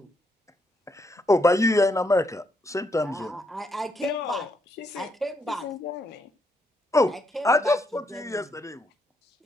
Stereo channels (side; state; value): both; normal; correlation 0.76